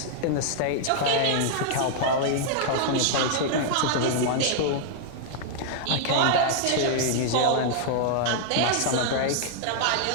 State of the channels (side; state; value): both; different; correlation -0.01